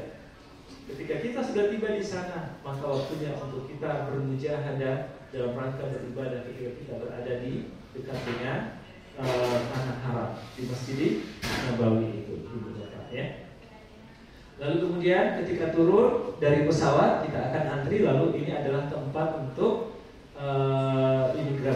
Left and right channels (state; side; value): identical; both; correlation 1.00